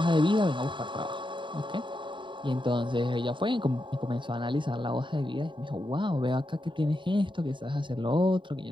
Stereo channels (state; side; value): late; left; 0.23 ms